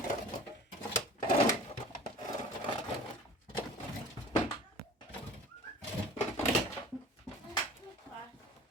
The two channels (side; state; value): both; normal; correlation 0.44